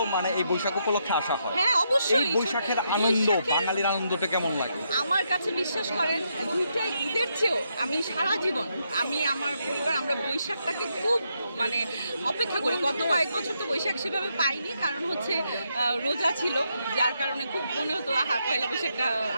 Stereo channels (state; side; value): inverted; both; correlation -0.79